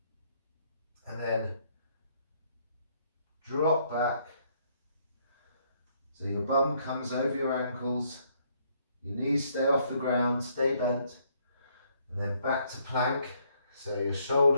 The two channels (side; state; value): both; inverted; correlation -0.69